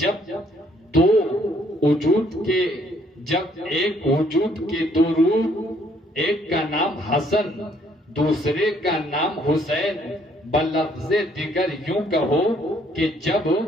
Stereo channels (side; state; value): both; normal; correlation 0.65